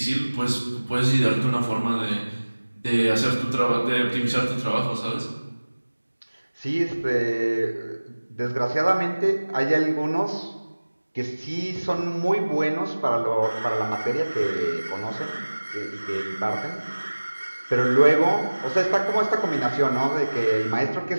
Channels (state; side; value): inverted; both; correlation -1.00